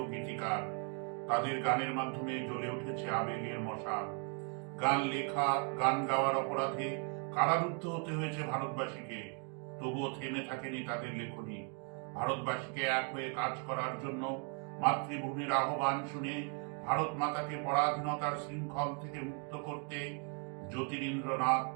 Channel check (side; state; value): left; quieter; 38.9 dB